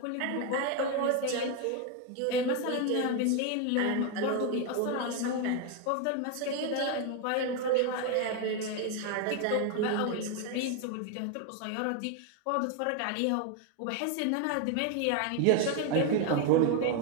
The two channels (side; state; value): both; different; correlation 0.01